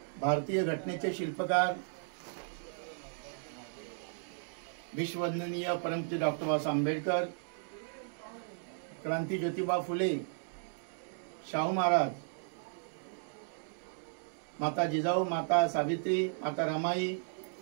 भारतीय घटनेचे शिल्पकार विश्ववंदनीय परमपूज्य डॉक्टर बाबासाहेब आंबेडकर, क्रांती ज्योतिबा फुले, शाहू महाराज, माता जिजाऊ, माता सावित्री, माता रमाई,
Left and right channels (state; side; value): silent; left; digital silence